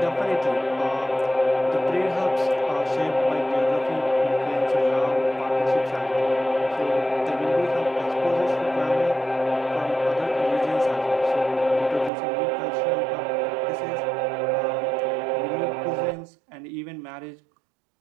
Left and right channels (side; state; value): left; drops out; at 12.1 s